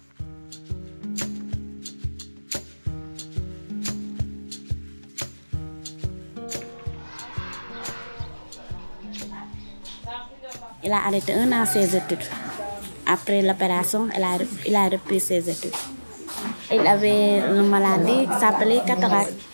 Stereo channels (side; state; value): both; inverted; correlation -1.00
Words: Il a arrêté 1 an ses études. Après l'opération, il a repris ses études. Il avait une maladie qui s'appelait cataracte.